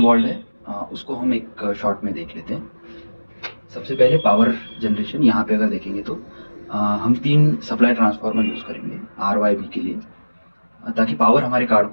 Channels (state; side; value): inverted; both; correlation -1.00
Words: है उसको हम एक शॉर्ट में देख लेते हैं। सबसे पहले पावर जनरेशन। यहाँ पे अगर देखेंगे तो हम 3 सप्लाई ट्रांसफार्मर यूज़ करेंगे RYB के लिए, ताकि पावर हमारे कार्ड